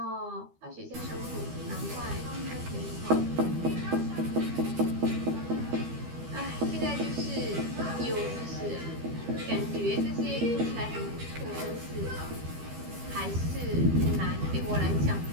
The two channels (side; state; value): left; late; 12 ms